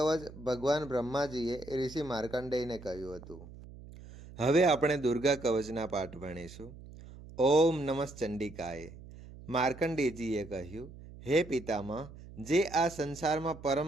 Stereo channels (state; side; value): noise; right; hum, 17 dB below the sound